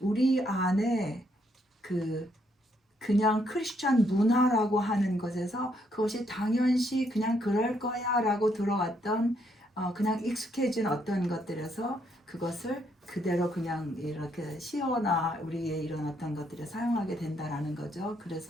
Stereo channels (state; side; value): normal; both; correlation 0.73